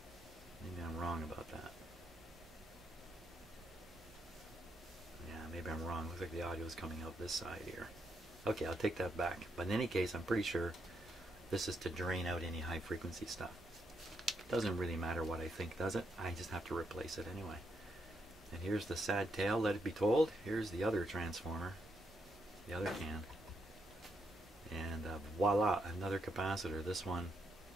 Maybe I'm wrong about that. Yeah, maybe I'm wrong. Looks like the audio is coming out this side here. Okay, I'll take that back. But in any case, I'm pretty sure this is to drain out any high frequency stuff. Doesn't really matter what I think, does it? I just have to replace it anyway. And here's the sad tale, let it be told. Here's the other transformer, the other can. And voila, another capacitor. This one,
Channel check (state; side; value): normal; both; correlation 0.79